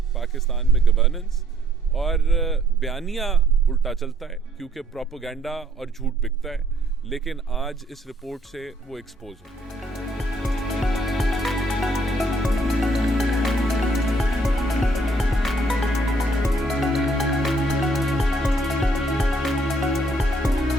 पाकिस्तान में गवर्नेंस। और बयानिया उल्टा चलता है क्योंकि प्रोपेगेंडा और झूठ बिकता है, लेकिन आज इस रिपोर्ट से वो एक्सपोज हो।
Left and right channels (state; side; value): normal; both; correlation 0.66